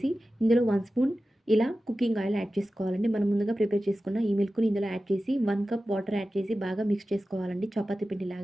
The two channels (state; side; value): normal; both; correlation 0.94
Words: ఇందులో 1 స్పూన్ ఇలా కుకింగ్ ఆయిల్ యాడ్ చేసుకోవాలండి. మనం ముందుగా ప్రిపేర్ చేసుకున్న ఈ మిల్క్‌ని ఇందులో యాడ్ చేసి 1 కప్ వాటర్ యాడ్ చేసి బాగా మిక్స్ చేసుకోవాలండి చపాతీ